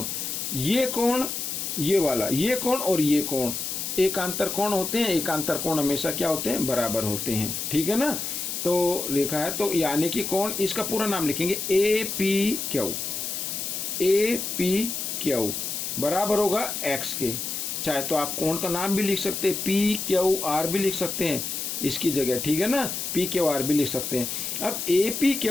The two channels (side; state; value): left; noise; hiss, 4 dB below the sound